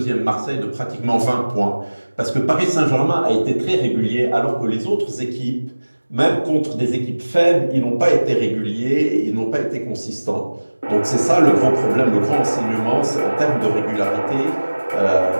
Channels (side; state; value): both; inverted; correlation -1.00